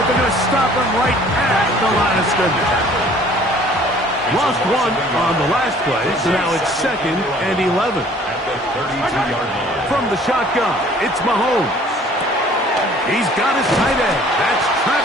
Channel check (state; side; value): normal; both; correlation 0.54